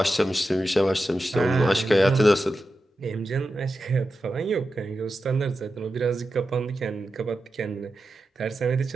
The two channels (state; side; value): normal; both; correlation 0.91